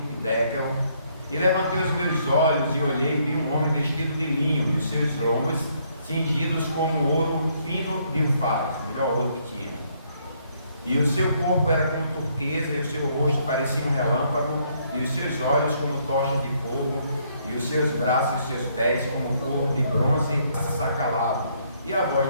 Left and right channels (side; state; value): both; inverted; correlation -0.70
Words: Dekel, e levantei os meus olhos e olhei, e vi um homem vestido de linho, e os seus lombos cingidos como ouro fino de Ufaz, o melhor ouro que tinha. E o seu corpo era como turquesa, e o seu rosto parecia um relâmpago, e os seus olhos como tochas de fogo, e os seus braços e os seus pés como couro de bronze assacalado, e a voz